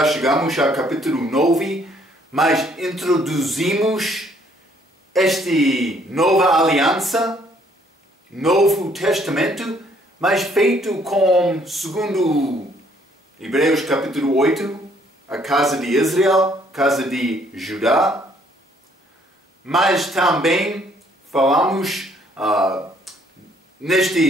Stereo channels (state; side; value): normal; both; correlation 0.64